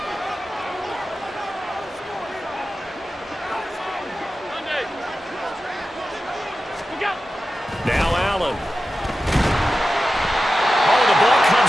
Now Allen. Oh, the ball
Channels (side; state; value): both; normal; correlation 0.93